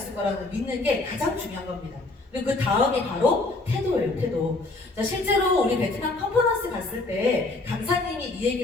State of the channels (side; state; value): right; quieter; 3.2 dB